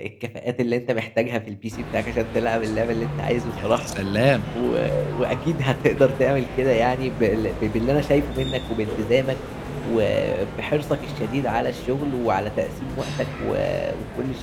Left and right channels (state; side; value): identical; both; correlation 1.00